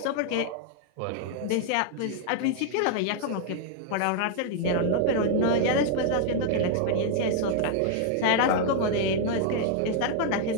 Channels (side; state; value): both; different; correlation 0.00